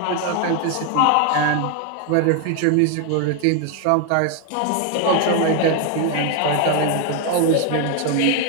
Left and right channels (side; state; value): both; different; correlation 0.01